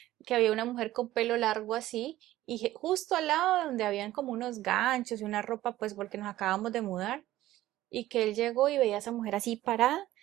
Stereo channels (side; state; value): left; quieter; 15.1 dB